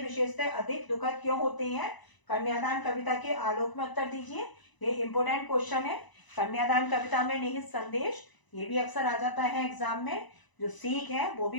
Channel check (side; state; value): right; late; 1.0 ms